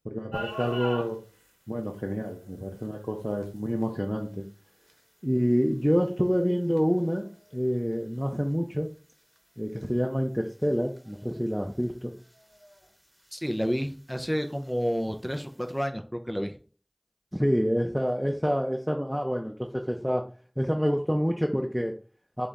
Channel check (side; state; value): both; identical; correlation 1.00